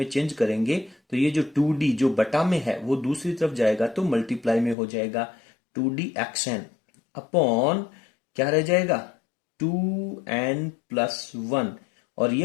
चेंज करेंगे तो ये जो 2d जो बटा में है वो दूसरी तरफ जाएगा तो मल्टीप्लाई में हो जाएगा 2d xn अपॉन क्या रह जाएगा 2n+1 और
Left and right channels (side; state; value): right; drops out; at 4.8 s